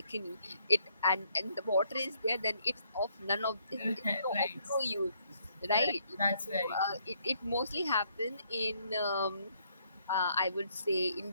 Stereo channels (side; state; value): both; inverted; correlation -0.70